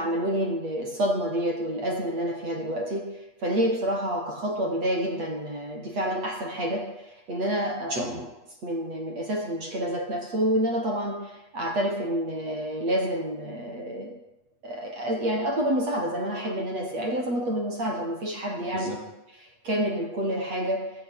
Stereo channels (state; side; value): late; left; 8.3 ms